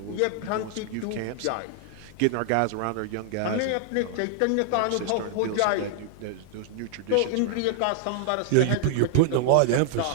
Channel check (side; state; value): both; different; correlation 0.00